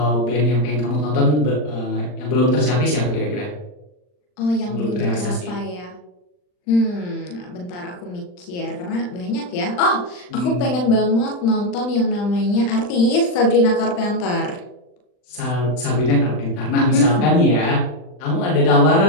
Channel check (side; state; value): right; late; 39 ms